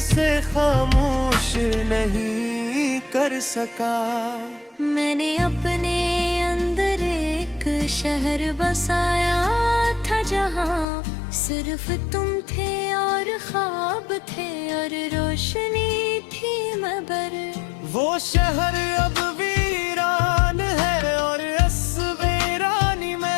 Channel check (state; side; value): drops out; right; at 10.9 s